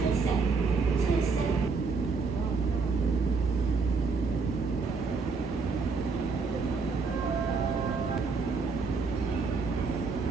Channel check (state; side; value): quieter; left; 4.6 dB